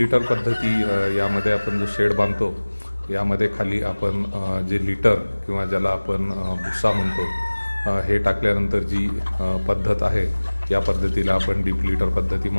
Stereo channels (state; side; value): inverted; both; correlation -1.00